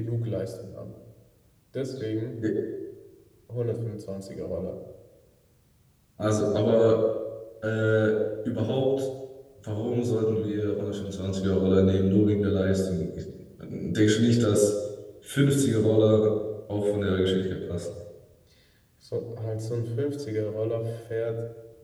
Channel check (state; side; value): identical; both; correlation 1.00